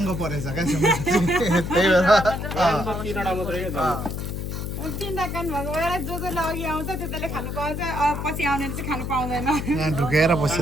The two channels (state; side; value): noise; left; hum, 4 dB below the sound